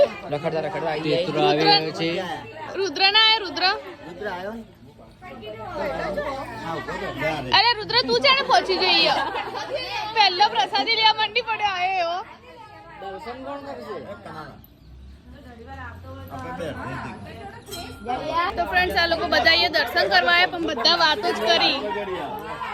રખડતા રુદ્ર ના આય રુદ્ર. અરે રુદ્ર તું જાણે પહોંચી જઈએ. પહેલો પ્રસાદી લેવા મંડી પડ્યો આયો એવો. તો ફ્રેન્ડ્સ આ લોકો બધા અહીંયા દર્શન કરવા આવ્યા પણ બધા વાતો જ કરી.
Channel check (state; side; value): identical; both; correlation 1.00